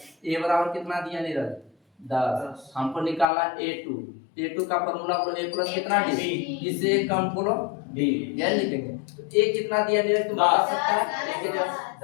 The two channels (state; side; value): drops out; right; at 3.2 s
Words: ए बराबर कितना दिया नीरज? 10। हमको निकालना A2। A2 का फॉर्मूला बोलो A प्लस कितना D, इससे एक कम बोलो D, यह लिखेंगे। तो A कितना दिया नीरज? तुम बता सकता है? A के जगह